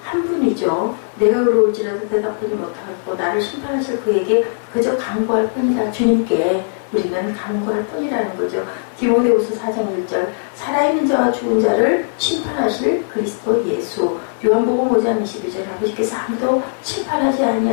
한 분이죠. 내가 의로울지라도 대답하지 못하고 나를 심판하실 그에게 그저 간구할 뿐이다. 주님께 우리는 간구할 뿐이라는 거죠. 디모데후서 4장 1절 살아있는 자와 죽은 자를 심판하실 그리스도 예수. 요한복음 5장 22절 아버지께서 아무도 심판하지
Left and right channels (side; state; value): right; silent; digital silence